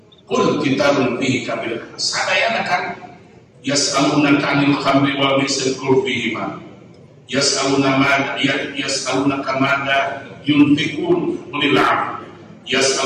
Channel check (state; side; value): identical; both; correlation 1.00